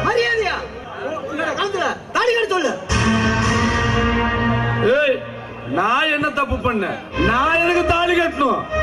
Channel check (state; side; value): identical; both; correlation 1.00